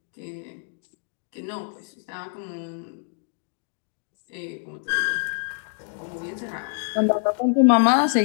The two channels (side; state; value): right; silent; 61 dB below the other